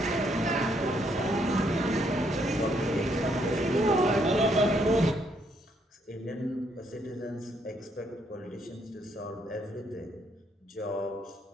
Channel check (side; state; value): both; normal; correlation 0.72